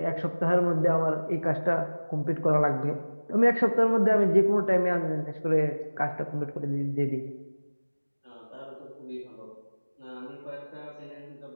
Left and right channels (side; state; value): both; inverted; correlation -1.00